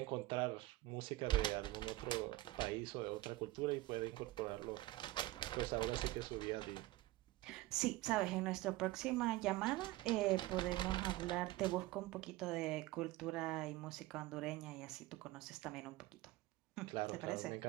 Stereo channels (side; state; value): left; quieter; 17.8 dB